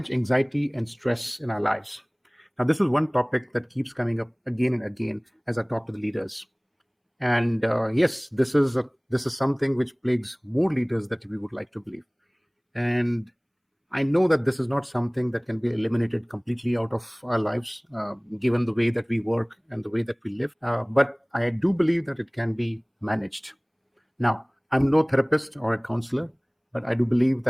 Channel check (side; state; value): both; identical; correlation 1.00